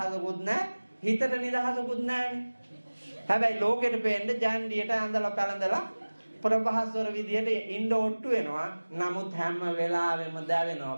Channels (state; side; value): inverted; both; correlation -1.00